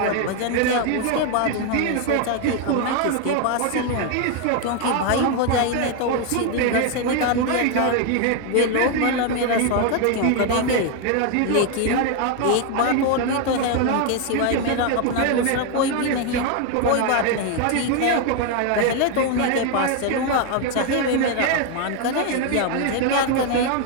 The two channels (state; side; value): different; both; correlation 0.01